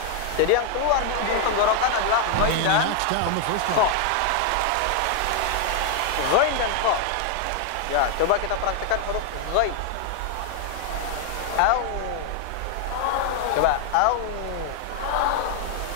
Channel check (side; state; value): both; different; correlation 0.00